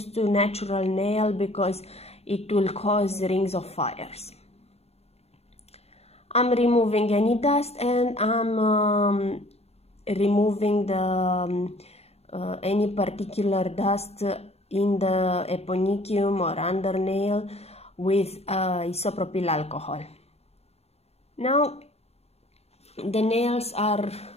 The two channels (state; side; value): late; right; 0.30 ms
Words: to natural nail because it will cause rings of fires. I'm removing any dust, and I'm removing the any particular dust in the eponychium or under nail with isopropyl alcohol. Now the nails are